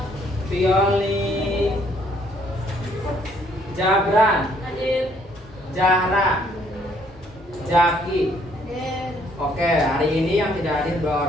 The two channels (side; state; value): both; normal; correlation 0.66